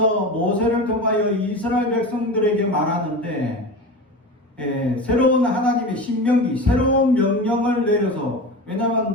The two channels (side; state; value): both; normal; correlation 0.28